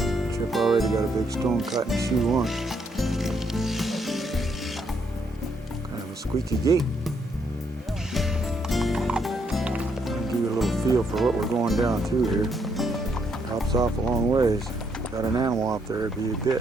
Chip already got a big stone cut in C1. Squeaky gate. I'll give you a little feel for what we're going down to here. Drops off a long ways. Got an animal out there, it'd be a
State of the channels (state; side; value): normal; both; correlation 0.74